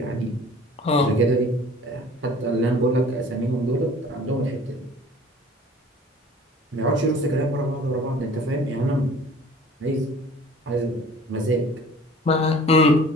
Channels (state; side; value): normal; both; correlation 0.47